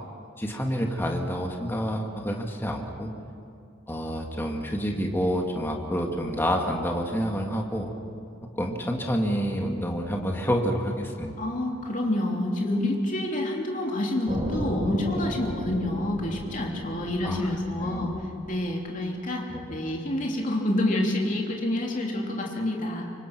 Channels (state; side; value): normal; both; correlation 0.74